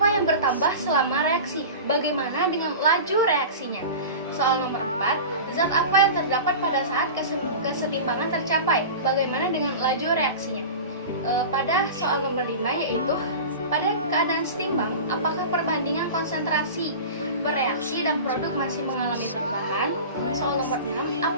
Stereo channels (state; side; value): inverted; both; correlation -0.32